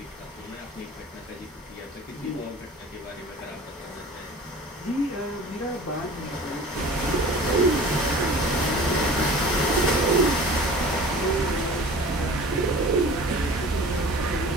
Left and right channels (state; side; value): normal; both; correlation 0.42